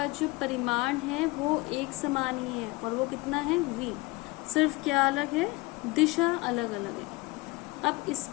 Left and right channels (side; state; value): right; quieter; 23.1 dB